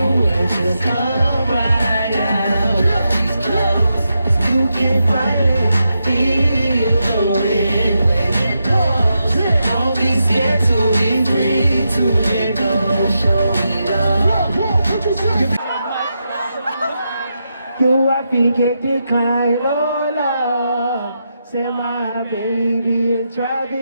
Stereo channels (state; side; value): inverted; both; correlation -0.86